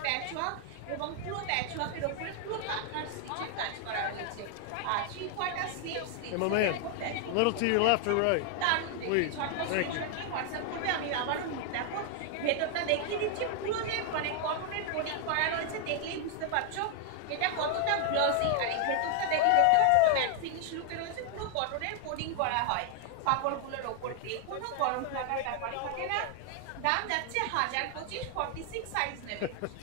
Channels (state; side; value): different; both; correlation 0.00